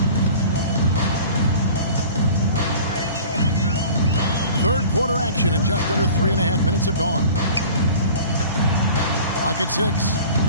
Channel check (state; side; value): inverted; both; correlation -0.42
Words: Third quarter action and just under 3.5 minutes have gone. Clock at 6.